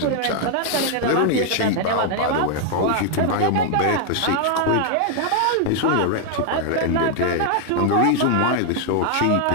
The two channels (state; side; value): different; both; correlation 0.00